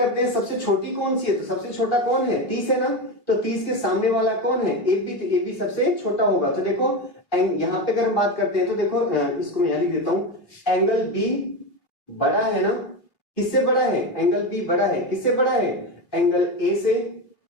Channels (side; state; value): right; late; 3.0 ms